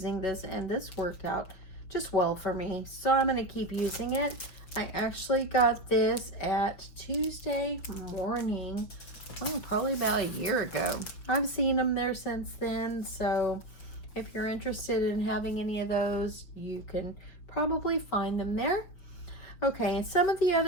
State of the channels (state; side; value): late; right; 6.0 ms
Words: this, and this worked out just well for me, so I'm going to keep using it. I actually got this at Tuesday morning, probably about a year ago. I've seen them there since then, so if you're interested in having any of those, you can probably find them there. Okay, and some of the